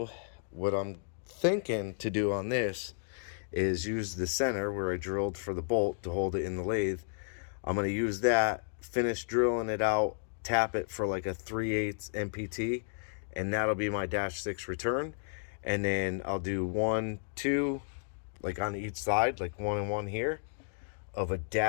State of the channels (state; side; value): silent; right; digital silence